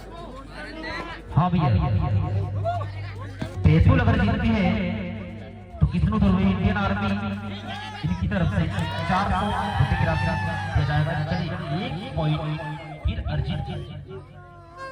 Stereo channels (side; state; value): both; identical; correlation 1.00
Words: हाँ भैया बैतूल अगर जीतती है तो किसनो ध्रुवी इंडियन आर्मी इनकी तरफ से 400 रुपए की राशि दिया जाएगा। चलिए 1 पॉइंट फिर अर्जित